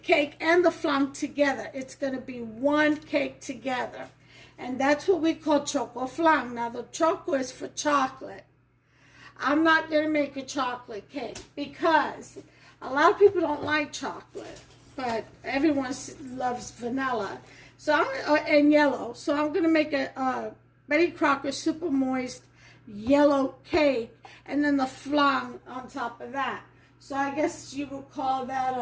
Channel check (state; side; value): identical; both; correlation 1.00